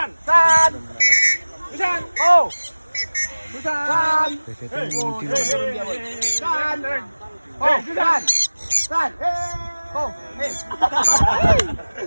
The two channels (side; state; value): both; inverted; correlation -1.00